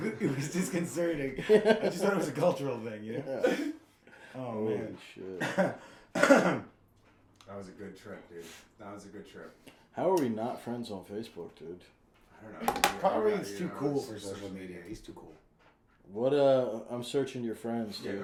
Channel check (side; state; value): both; identical; correlation 1.00